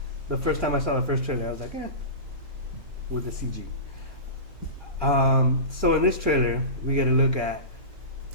The first time I saw the first trailer, I was like, with the CG. So in this trailer, we get a look at,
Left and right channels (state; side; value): late; left; 2.9 ms